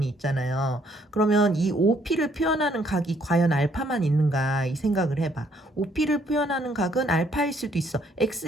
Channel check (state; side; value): normal; both; correlation 0.67